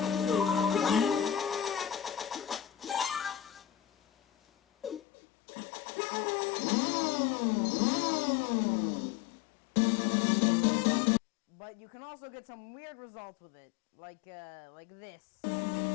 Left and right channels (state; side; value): drops out; right; at 5.0 s